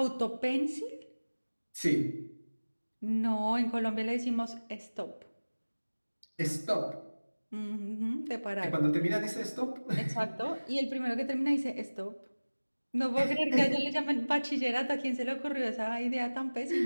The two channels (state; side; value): inverted; both; correlation -1.00